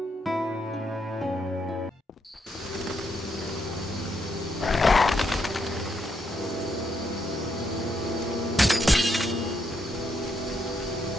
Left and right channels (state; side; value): normal; both; correlation 0.77